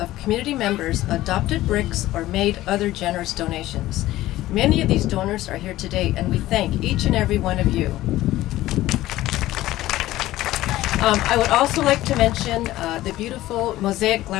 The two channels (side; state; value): right; quieter; 15.8 dB